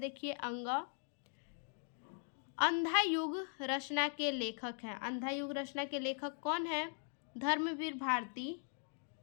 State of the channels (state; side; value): silent; right; 51 dB below the other